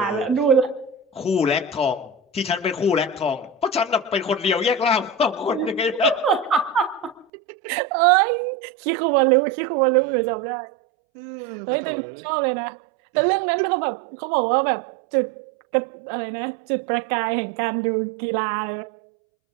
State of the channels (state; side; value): drops out; left; at 7.2 s